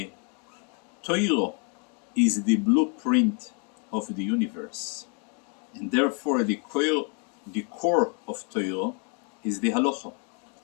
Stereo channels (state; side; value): quieter; right; 38.3 dB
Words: Torah is the blueprint of the universe, and therefore the core of Torah is the halacha,